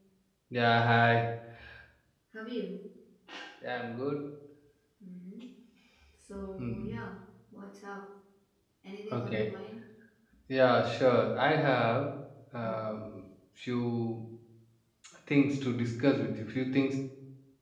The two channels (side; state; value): both; identical; correlation 1.00